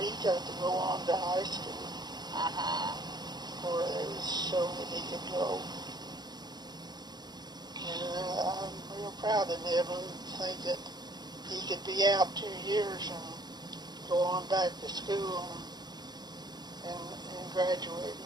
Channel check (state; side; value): late; left; 0.20 ms